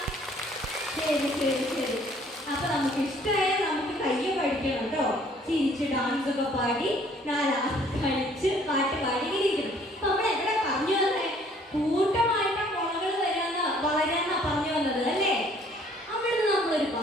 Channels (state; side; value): normal; both; correlation 0.59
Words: ശരി ശരി ശരി. അപ്പൊ നമുക്ക് ഇഷ്ടമായ നമുക്ക് കയ്യെ പഠിക്കണം കേട്ടോ. ചിരിച്ച് ഡാൻസ് ഒക്കെ പാടി 4 കളിച്ച് പാട്ട് പാടി ഇരിക്കണം. അപ്പൊ നമ്മൾ എവിടെ പറഞ്ഞു വന്നേ? കൂട്ടമായിട്ട് മുളകൾ വളരാന്നാ പറഞ്ഞു വന്നത് അല്ലേ? അവിടുന്ന് നമ്മളൊരു